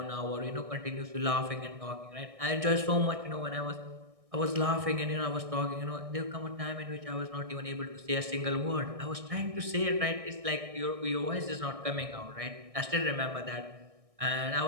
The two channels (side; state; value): left; late; 1.6 ms